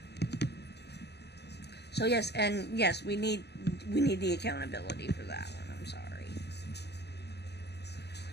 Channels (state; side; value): late; right; 0.49 ms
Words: So yes, we need the accountability for that one. I'm sorry.